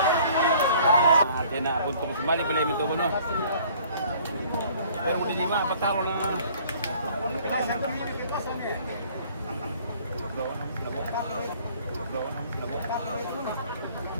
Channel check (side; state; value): both; inverted; correlation -0.55